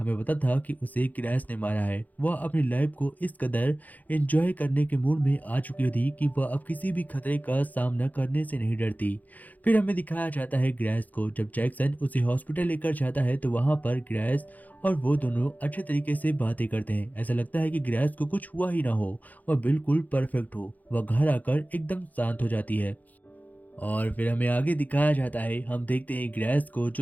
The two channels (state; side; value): late; right; 0.080 ms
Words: पता था कि उसे ग्रेस ने मारा है। वह अपनी लाइफ को इस कदर एंजॉय करने के मूड में आ चुकी थी कि वह अब किसी भी खतरे का सामना करने से नहीं डरती। फिर हमें दिखाया जाता है ग्रेस को। जब जैक्सन उसे हॉस्पिटल लेकर जाता है तो वहां पर ग्रेस और वो दोनों अच्छे तरीके से बातें करते हैं। ऐसा लगता है कि ग्रेस को कुछ हुआ ही ना हो, वह बिल्कुल परफेक्ट हो। वह घर आकर एकदम शांत हो जाती है और फिर हमें आगे दिखाया जाता है। हम देखते हैं ग्रेस को